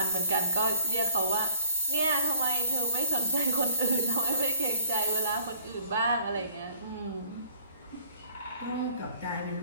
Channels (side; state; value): both; inverted; correlation -0.57